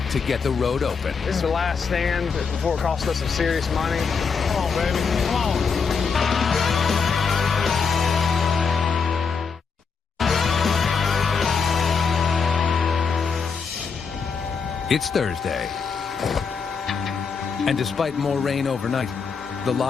to get the road open. This is the last stand before it costs us some serious money. Come on, baby. Come on. It's Thursday. And despite more rain overnight, the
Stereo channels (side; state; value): right; quieter; 5.5 dB